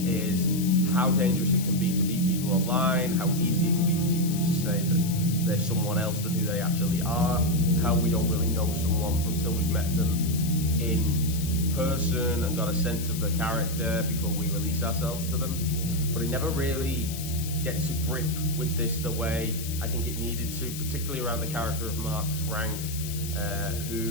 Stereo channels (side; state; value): left; noise; hiss, 9 dB below the sound